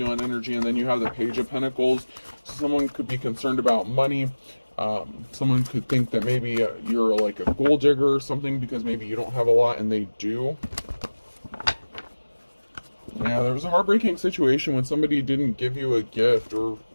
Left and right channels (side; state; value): both; inverted; correlation -1.00